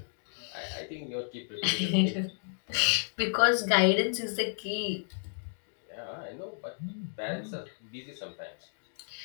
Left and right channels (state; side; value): silent; right; digital silence